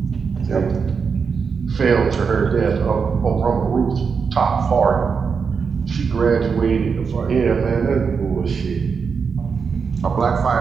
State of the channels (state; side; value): quieter; left; 5.7 dB